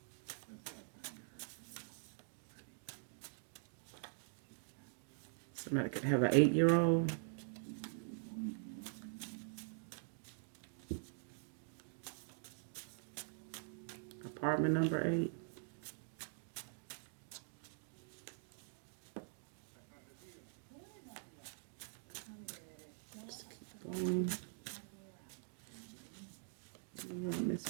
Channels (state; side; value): silent; left; digital silence